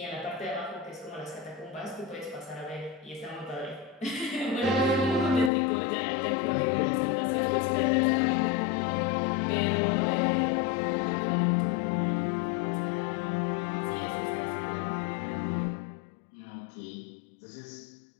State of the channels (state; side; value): drops out; right; at 5.5 s